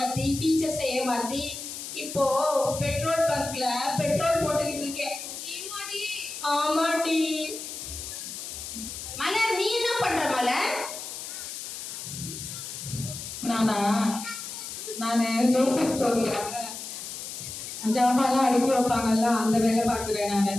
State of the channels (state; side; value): noise; left; hiss, 8 dB below the sound